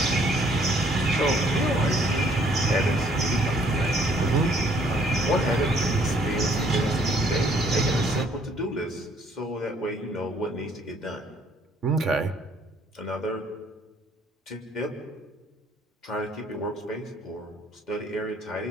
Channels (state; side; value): normal; both; correlation 0.63